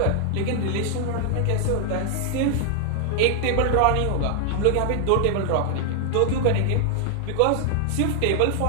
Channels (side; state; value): both; different; correlation 0.00